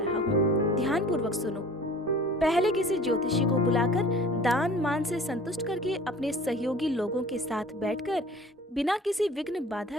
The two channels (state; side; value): normal; both; correlation 0.45